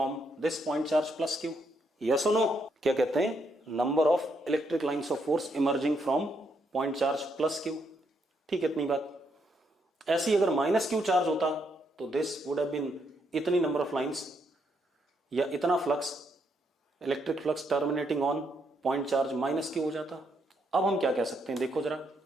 this point charge plus Q, yes और नो? क्या कहते हैं, number of electric lines of force emerging from point charge plus Q. ठीक है, इतनी बात। ऐसी अगर माइनस क्यू चार्ज होता तो दिस वुड हैव बीन इतनी नंबर ऑफ लाइंस या इतना flux, electric flux terminating on point charge minus Q हो जाता। अब हम क्या कह सकते हैं, देखो जरा,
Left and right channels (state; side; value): normal; both; correlation 0.76